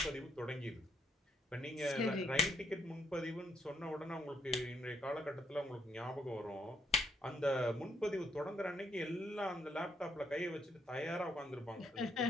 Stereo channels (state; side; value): normal; both; correlation 0.74